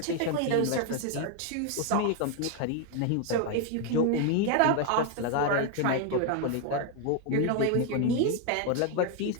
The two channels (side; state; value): both; different; correlation 0.01